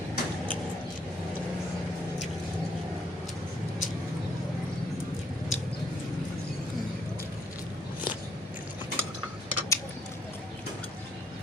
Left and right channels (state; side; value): normal; both; correlation 0.69